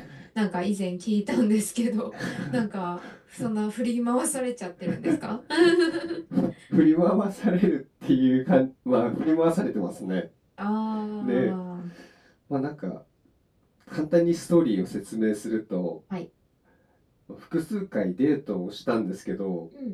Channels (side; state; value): both; identical; correlation 1.00